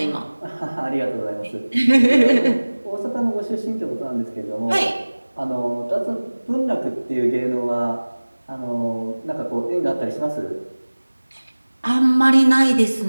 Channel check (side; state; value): both; inverted; correlation -1.00